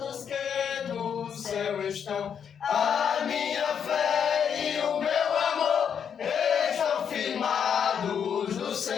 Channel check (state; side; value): quieter; right; 7.7 dB